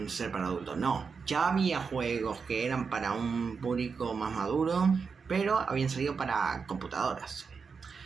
ser para adultos, no. Ya había juegos que eran para un público más maduro, pero habían salido para computadoras.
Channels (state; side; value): quieter; left; 5.4 dB